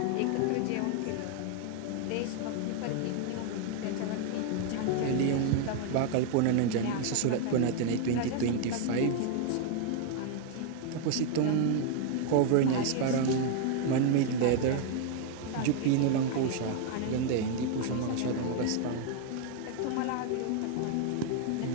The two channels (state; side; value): different; both; correlation 0.00